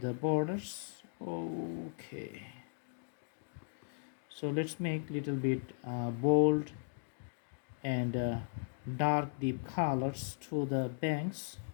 borders. Okay, so let's make little bit bold and dark deep colors to the banks,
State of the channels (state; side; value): silent; right; digital silence